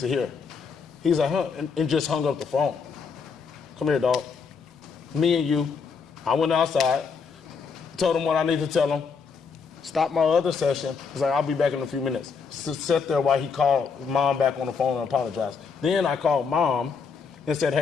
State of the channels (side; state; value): right; quieter; 5.5 dB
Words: hear. He's like, huh, and just hung up the phone. Come here, dog. Me and you. I went outside, told him what I need to tell him, stopped my other session. He's like, I'll be back in a few minutes. Sat there while he called Mom back on the phone and apologized. Then I called Mom and said,